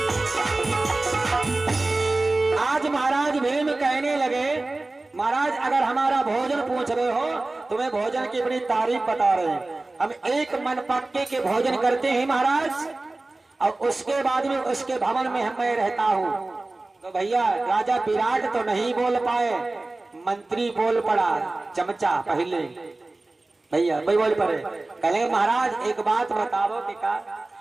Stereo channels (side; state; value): left; quieter; 3.0 dB